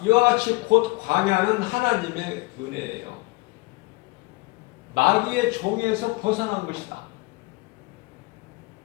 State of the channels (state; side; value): quieter; right; 24.1 dB